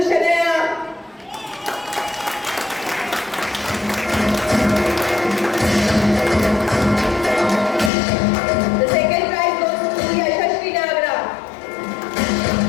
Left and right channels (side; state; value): right; drops out; at 7.9 s